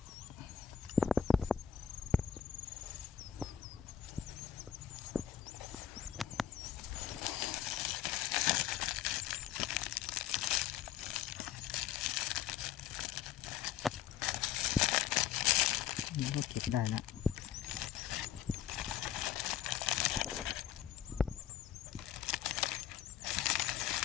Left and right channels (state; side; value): quieter; right; 9.7 dB